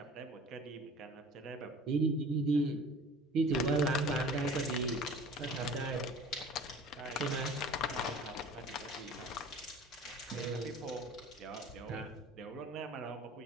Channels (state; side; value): normal; both; correlation 0.44